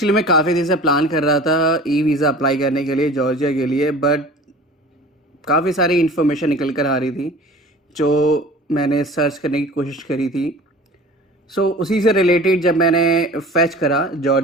मैं काफ़ी दिन से प्लान कर रहा था ई वीज़ा अप्लाई करने के लिए जॉर्जिया के लिए, बट काफ़ी सारी इन्फॉर्मेशन निकल कर आ रही थी जो मैंने सर्च करने की कोशिश करी थी। सो उसी से रिलेटेड जब मैंने फैच करा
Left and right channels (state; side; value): normal; both; correlation 0.42